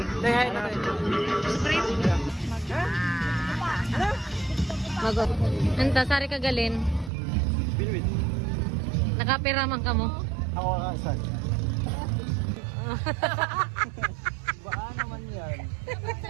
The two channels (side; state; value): left; drops out; at 7.1 s